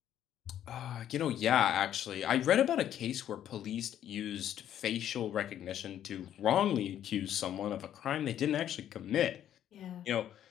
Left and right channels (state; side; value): quieter; right; 10.8 dB